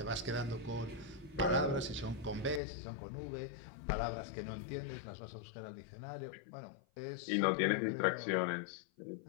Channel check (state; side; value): drops out; right; at 2.6 s